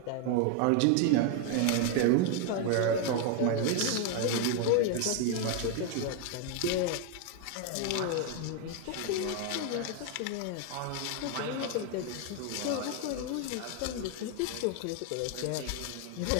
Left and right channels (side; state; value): both; different; correlation 0.01